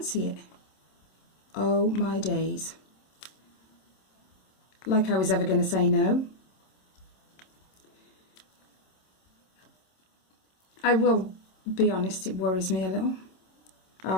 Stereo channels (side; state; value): right; late; 26 ms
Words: it? Oh my days. Like I was ever going to say no. I will be honest, it worries me a little.